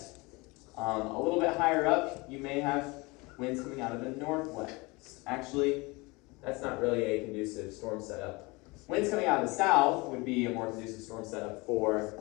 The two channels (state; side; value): quieter; right; 25.2 dB